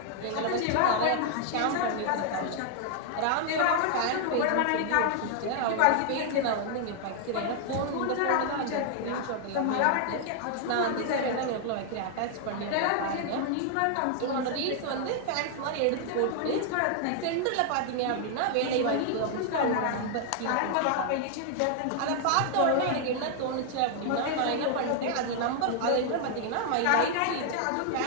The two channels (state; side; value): different; both; correlation 0.00